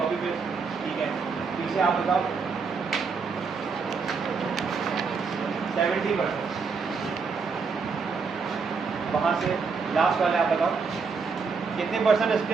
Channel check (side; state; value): left; quieter; 5.1 dB